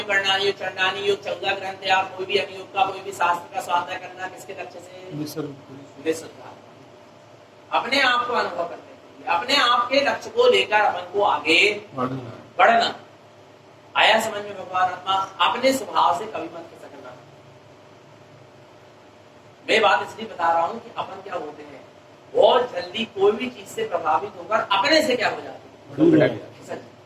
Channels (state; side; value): identical; both; correlation 1.00